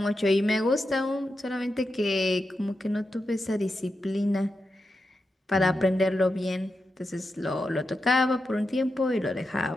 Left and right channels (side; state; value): both; normal; correlation 0.88